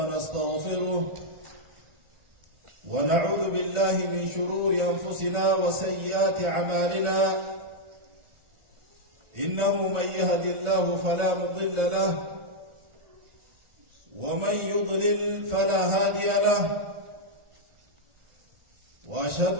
ونعوذ بالله من شرور أنفسنا وسيئات أعمالنا إنه من يهد الله فلا مضل له ومن يضلل فلا هادي له وأشهد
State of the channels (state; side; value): late; left; 1.4 ms